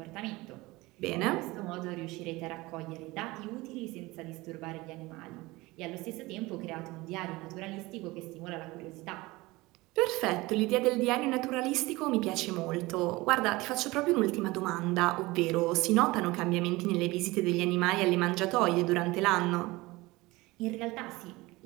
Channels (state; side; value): quieter; left; 21.2 dB